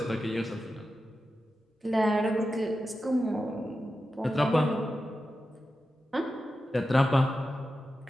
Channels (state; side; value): normal; both; correlation 0.91